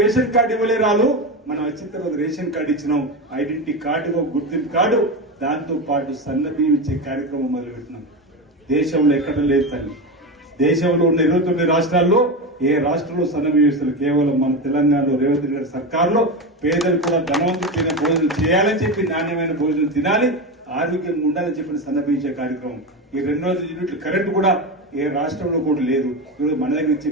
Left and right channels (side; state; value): both; normal; correlation 0.18